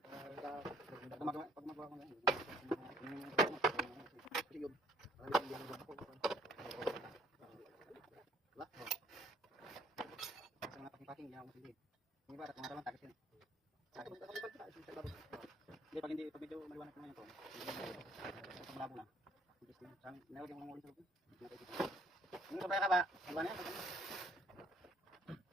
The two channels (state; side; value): normal; both; correlation 0.62